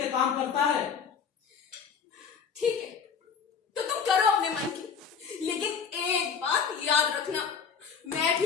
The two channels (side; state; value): right; quieter; 6.3 dB